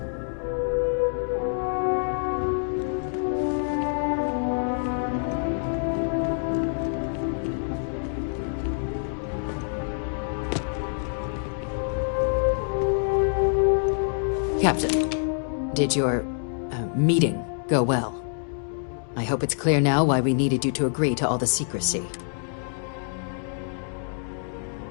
Captain, did your meeting go well? I hope it's clear now why we needed you to agree to all the secrecy.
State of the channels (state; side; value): silent; right; digital silence